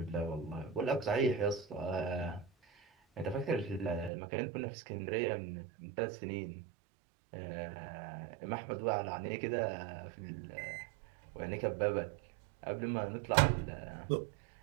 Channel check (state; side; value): drops out; left; at 4.1 s